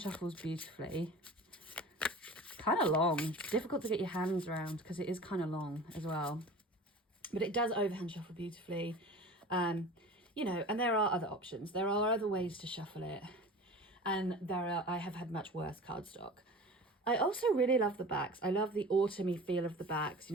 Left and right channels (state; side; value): normal; both; correlation 0.38